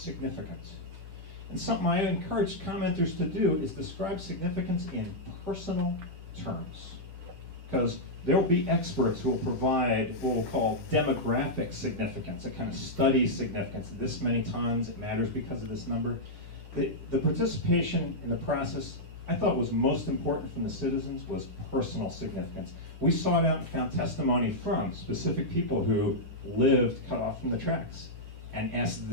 And something I encourage commenters to do is describe significance in personal terms, because there will be experts who will provide what we'll call demographic significance, a kind of study significance. This many tons, it matters because of this number. The participation in the process I thought was most important from the citizens was personal significance. We sought out and found testimony from specific people who lived cut off from the tracks and asked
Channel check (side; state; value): left; late; 10 ms